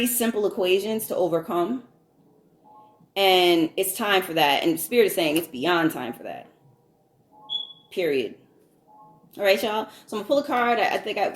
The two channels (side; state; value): both; identical; correlation 1.00